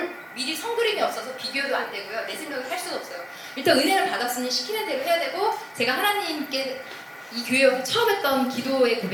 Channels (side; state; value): both; identical; correlation 1.00